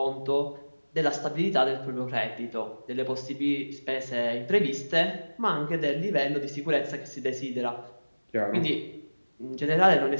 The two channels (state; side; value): inverted; both; correlation -1.00